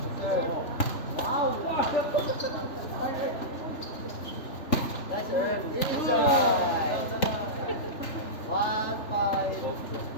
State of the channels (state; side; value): late; right; 3.4 ms